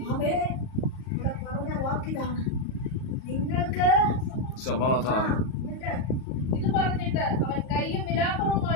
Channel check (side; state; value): right; late; 38 ms